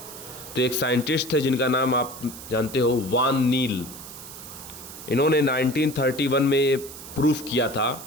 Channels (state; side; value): noise; right; hiss, 14 dB below the sound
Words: तो एक साइंटिस्ट थे जिनका नाम आप जानते हो, वान नील। इन्होंने 1931 में ये प्रूफ किया था